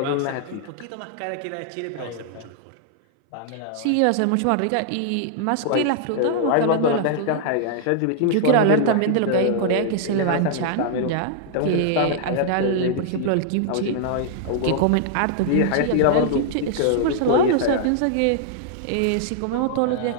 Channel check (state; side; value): different; both; correlation -0.01